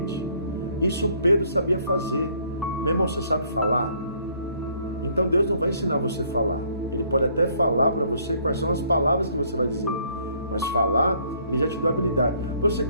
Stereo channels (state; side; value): inverted; both; correlation -0.64